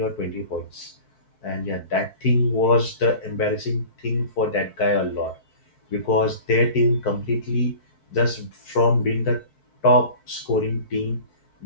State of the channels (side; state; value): right; late; 4.6 ms